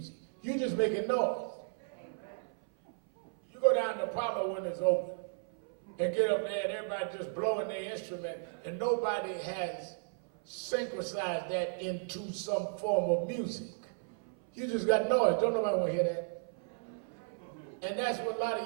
You just making noise. You go down to Apollo when it's open and get up there and everybody just blowing their instrument and nobody has synchronized that into some form of music. You just got noise. Don't nobody want to hear that. And that's what a lot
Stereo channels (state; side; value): silent; left; 55 dB below the other